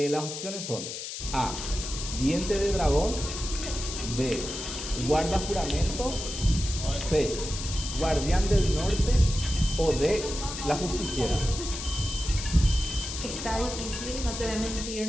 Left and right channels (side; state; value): left; noise; hiss, 7 dB below the sound